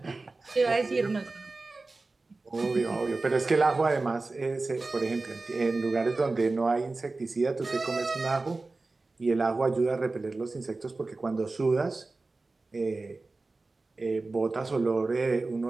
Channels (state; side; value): quieter; left; 3.5 dB